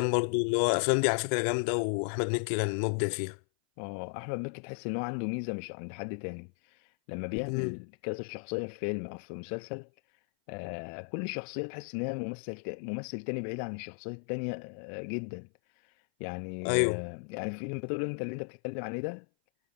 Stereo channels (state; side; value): silent; right; 55 dB below the other